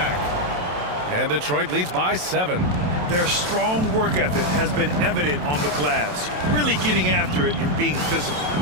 And Detroit leads by 7. Their strong work ethic has been evident on the glass, really getting after it and being physical.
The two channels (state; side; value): late; left; 27 ms